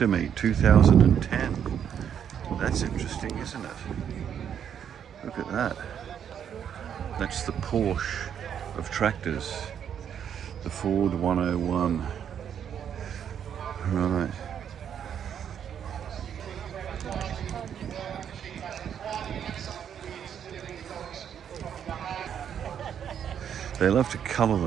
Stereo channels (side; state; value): left; quieter; 8.7 dB